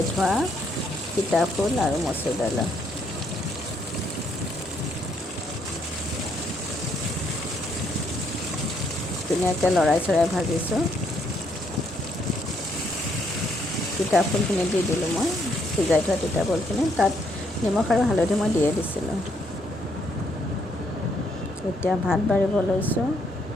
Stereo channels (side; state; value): both; normal; correlation 0.72